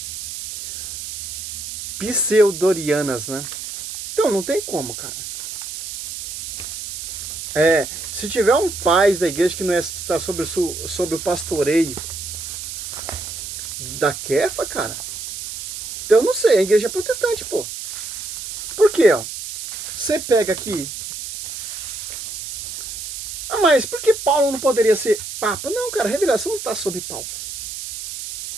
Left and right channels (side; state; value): right; noise; hiss, 8 dB below the sound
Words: pseudorianas, né? Então não tem como, cara. Se tiver um pai da igreja que não está sob o pastoreio da Kefa, cara, então eu não sei, a igreja é protestante, pô. Por quê, ó? Você pega aqui. Ah, mas por que Paulo não poderia ser papa? Não, cara, a revelação não está sob Paulo.